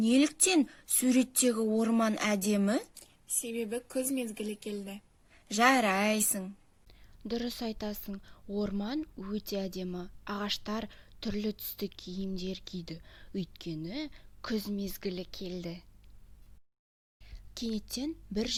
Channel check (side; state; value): both; identical; correlation 1.00